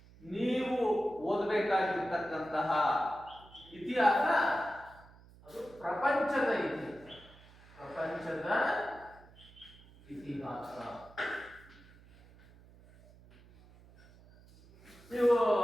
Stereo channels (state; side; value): noise; right; hum, 24 dB below the sound